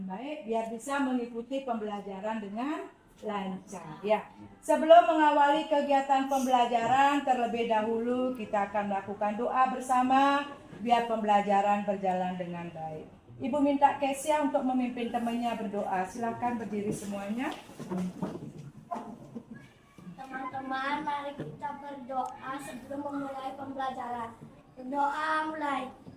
baik biar bisa mengikuti pembelajaran dengan lancar. Ya, sebelum mengawali kegiatan pembelajaran terlebih dahulu kita akan melakukan doa bersama biar pembelajaran berjalan dengan baik. Ibu minta Kesia untuk memimpin temannya berdoa. Silakan berdiri semuanya. Teman-teman, mari kita berdoa sebelum memulai pembelajaran. Berdoa mulai.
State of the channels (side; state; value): both; identical; correlation 1.00